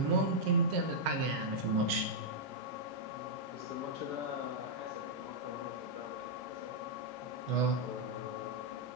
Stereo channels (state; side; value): late; left; 15 ms